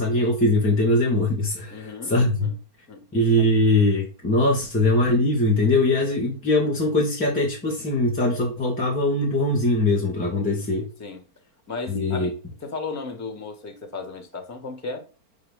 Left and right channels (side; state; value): left; late; 4.4 ms